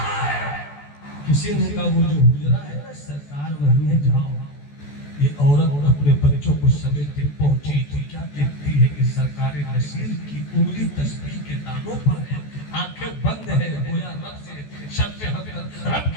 ہے. کسی نے کہا وہ جو حجرہ ہے نا سرکار وہیں ہے, جاؤ. یہ عورت اپنے بچوں کو سمیٹے پہنچی تو کیا دیکھتی ہے کہ سرکار نصیر کی انگلی تسبیح کے دانوں پر ہے, آنکھیں بند ہے, گویا رب سے شرف حق, رب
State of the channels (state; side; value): late; right; 14 ms